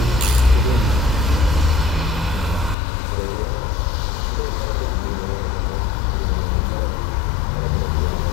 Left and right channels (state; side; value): drops out; right; at 2.8 s